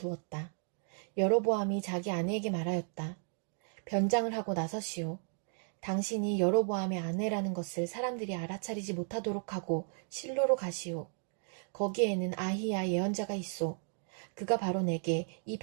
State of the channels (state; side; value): silent; left; 55 dB below the other